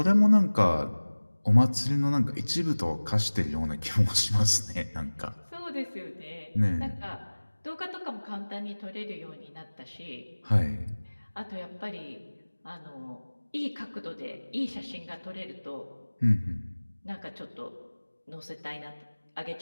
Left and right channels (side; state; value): both; inverted; correlation -1.00